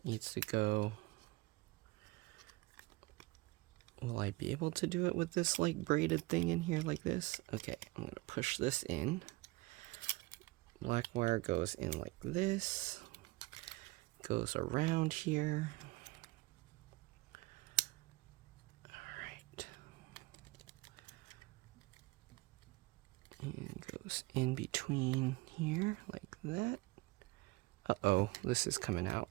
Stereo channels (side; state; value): left; quieter; 21.9 dB